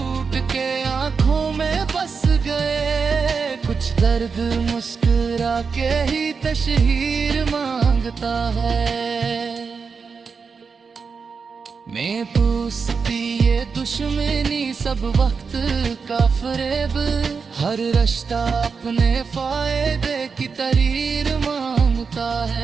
के आंखों में बस गए, कुछ दर्द मुस्कुरा के ही तशहीर मांगता है। मैं पूछती ये दुश्मनी सब वक्त का फरेब, हर रिश्ता अपने फायदे की तहरीर मांगता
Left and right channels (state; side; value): quieter; left; 5.4 dB